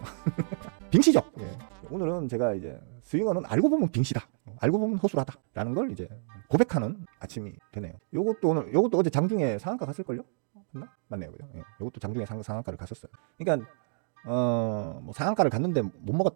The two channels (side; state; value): left; silent; digital silence